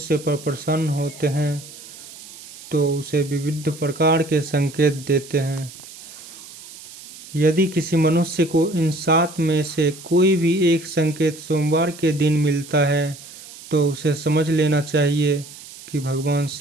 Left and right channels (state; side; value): noise; right; hiss, 17 dB below the sound